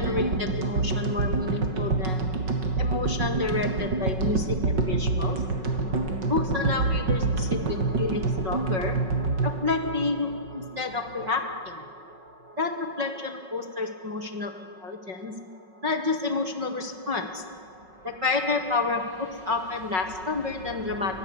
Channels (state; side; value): late; left; 5.4 ms